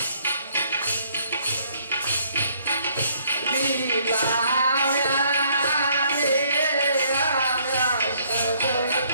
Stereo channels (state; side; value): inverted; both; correlation -0.65